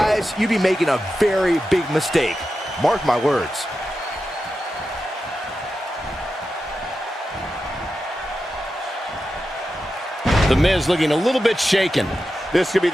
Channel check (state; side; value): normal; both; correlation 0.91